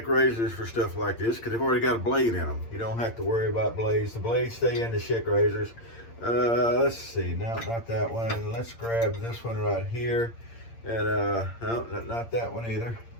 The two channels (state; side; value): late; right; 8.7 ms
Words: razors for stuff like this because they've already got a blade in them. You don't have to worry about blades. The blades stay in the Schick razors. Let's see. No, not that one. Let's grab this one right here. And no, not that one either.